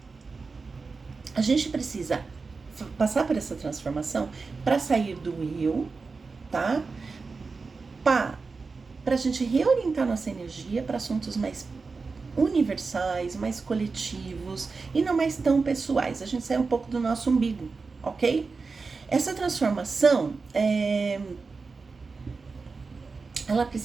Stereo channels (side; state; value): left; quieter; 4.4 dB